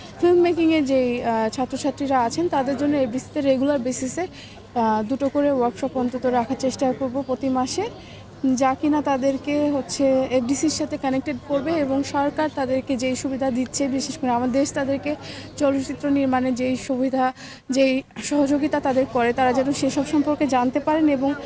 ফিল্ম মেকিংয়ের যেই ছাত্রছাত্রীরা আছেন তাদের জন্য এফডিসিতে রেগুলার বেসিসে 2টো করে ওয়ার্কশপ অন্তত রাখার চেষ্টা করব প্রতি মাসে, যা কিনা তাদেরকে হচ্ছে এফডিসির সাথে কানেক্টেড করবে এবং সরকার তাদেরকে যেই সুবিধা দিচ্ছে, বিশেষ করে আমাদের দেশ তাদেরকে চলচ্চিত্র নির্মাণে যেই সুবিধা, যেই সহযোগিতা তাদের করে, তারা যেন সেসব সম্পর্কে জানতে পারেন এবং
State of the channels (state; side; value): identical; both; correlation 1.00